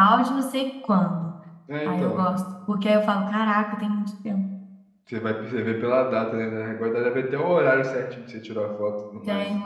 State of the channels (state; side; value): identical; both; correlation 1.00